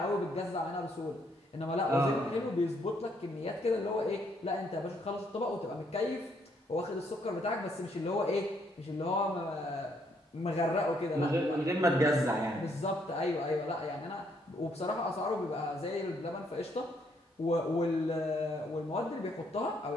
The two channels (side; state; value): both; normal; correlation 0.71